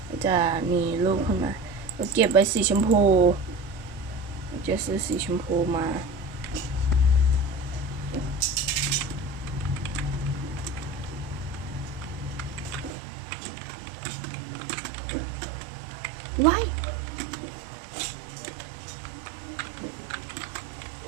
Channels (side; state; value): left; drops out; at 12.9 s